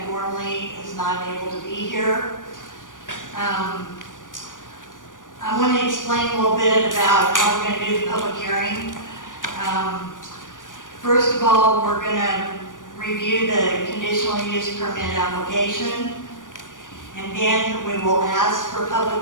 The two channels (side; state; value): right; late; 0.88 ms